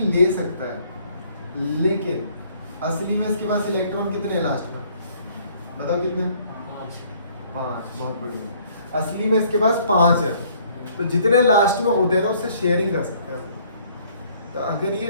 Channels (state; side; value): inverted; both; correlation -0.60